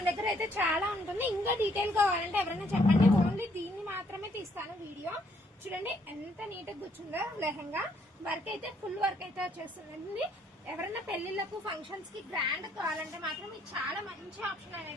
దగ్గర అయితే చాలా ఉంటుంది. ఇంకా డీటెయిల్ కావాలంటే ఎవరైనా చెప్పండి. ఓన్లీ దీన్ని మాత్రమే తీస్తాను వీడియో. చూడండి ఎంత నీట్ గా కూర్చుందో లెహంగా. వర్క్ అయితే ఫుల్ వర్క్ అయితే వచ్చేస్తుంది. ఎవరైనా పెళ్లిళ్లకు ఫంక్షన్స్ కి గ్రాండ్ కావాలంటే మాత్రం ఇది చాలా మంచి ఆప్షన్ అని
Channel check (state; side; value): normal; both; correlation 0.68